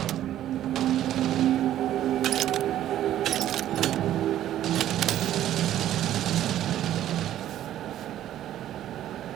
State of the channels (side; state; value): left; quieter; 12.2 dB